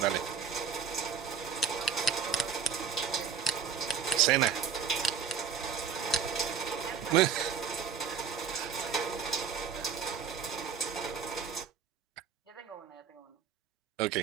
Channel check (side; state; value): left; quieter; 6.7 dB